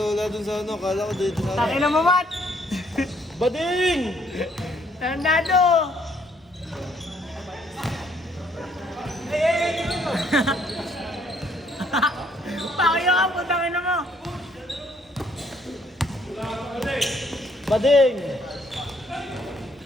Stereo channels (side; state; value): both; normal; correlation 0.67